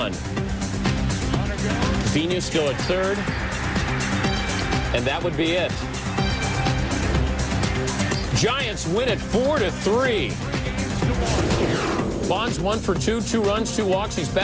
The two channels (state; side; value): identical; both; correlation 1.00